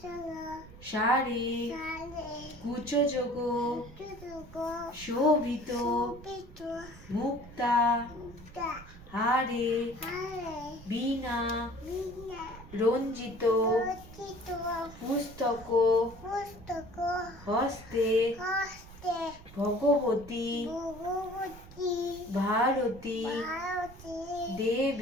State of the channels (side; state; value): right; noise; rumble, 18 dB below the sound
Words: সারে কুচযোগ শোভিত মুক্তা হারে বীণা রঞ্জিত পুস্তক হস্তে ভগবতী ভারতী